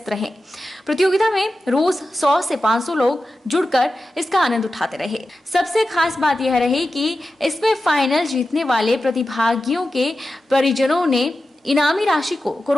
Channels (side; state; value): both; normal; correlation 0.92